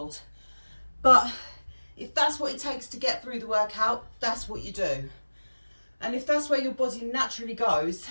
But if that's what it takes to get through the workout, that's what you do. And if that's where your body naturally goes,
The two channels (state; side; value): inverted; both; correlation -1.00